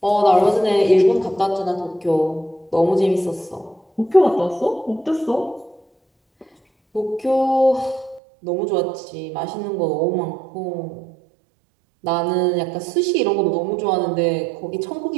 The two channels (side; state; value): left; drops out; at 8.2 s